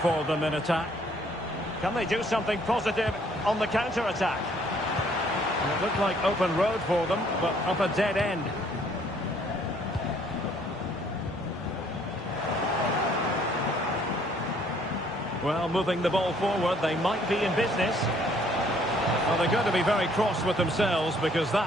for them in attack. Can they do something positive on the counter-attack? It looked like open road for them, but up a dead end. Well, moving the ball forward, they might be in business. Well, they're going to be very cross with themselves because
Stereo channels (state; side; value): normal; both; correlation 0.62